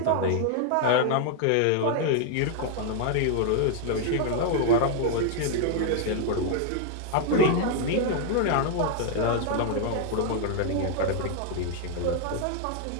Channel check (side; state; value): both; different; correlation 0.00